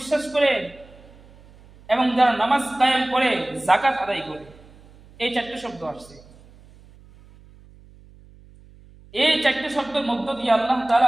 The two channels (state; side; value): noise; right; hum, 24 dB below the sound